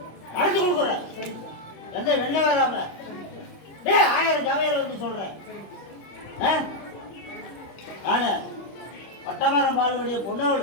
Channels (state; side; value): late; right; 25 ms